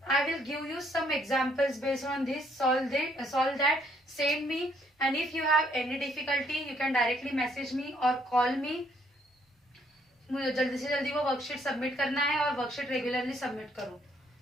I will give you some examples based on this. Solve that. Send me, and if you have any difficulty, you can directly message me or call me. मुझे जल्दी से जल्दी वो worksheet submit करना है और worksheet regularly submit करो।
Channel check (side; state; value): both; normal; correlation 0.68